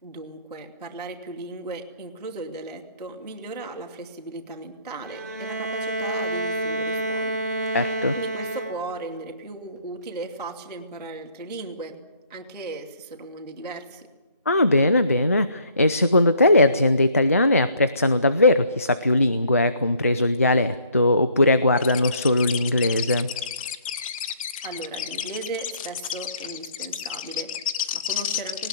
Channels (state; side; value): inverted; both; correlation -0.62